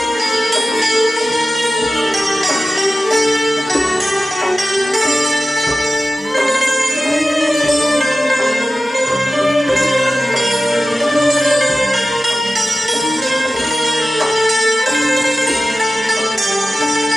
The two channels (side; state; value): both; normal; correlation 0.95